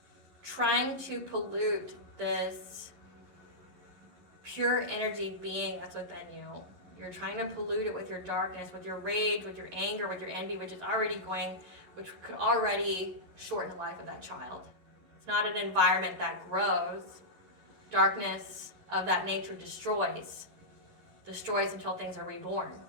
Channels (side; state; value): left; late; 11 ms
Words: trying to pollute this pure energy being that's within you. You're trying to pollute it with your darkness, with your rage, with your anger, with your envy, which could already shorten the life of that child. It's not an environment that grows. Darkness of that nature destroys until things are reborn,